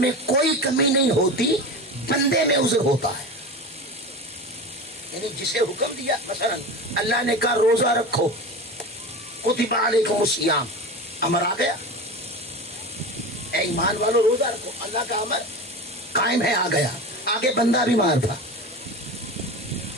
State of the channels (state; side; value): normal; both; correlation 0.29